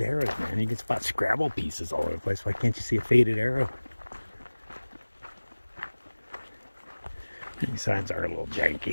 man. You can spot Scrabble pieces all over the place. Why can't you see a faded arrow? These signs are a little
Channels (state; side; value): inverted; both; correlation -1.00